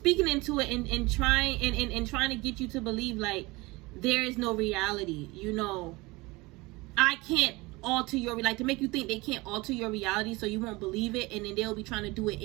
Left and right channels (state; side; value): quieter; left; 22.8 dB